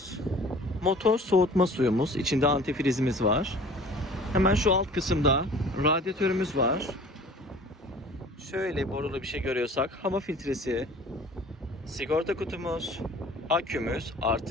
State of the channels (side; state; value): both; normal; correlation 0.46